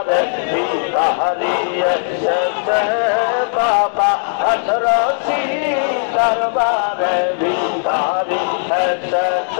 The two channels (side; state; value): right; silent; digital silence